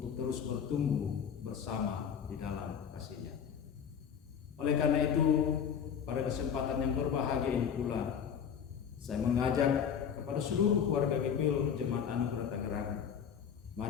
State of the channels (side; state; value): right; quieter; 7.6 dB